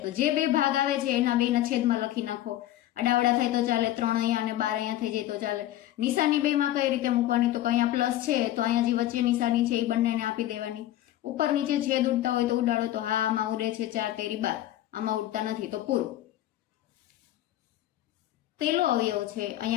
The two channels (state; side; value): quieter; right; 13.7 dB